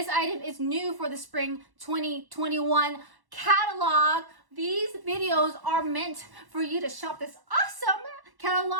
item is new for the spring 2021 catalog. These videos are meant for you to shop this awesome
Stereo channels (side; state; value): left; late; 1.1 ms